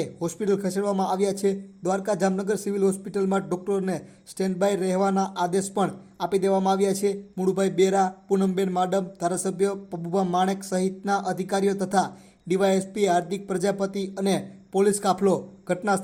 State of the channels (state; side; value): identical; both; correlation 1.00